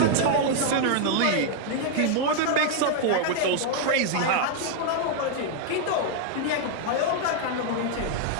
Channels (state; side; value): different; both; correlation 0.00